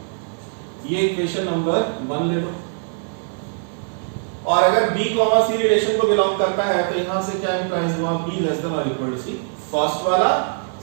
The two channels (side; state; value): left; silent; 56 dB below the other